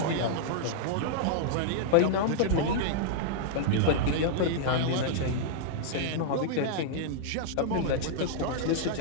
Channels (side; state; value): both; different; correlation -0.01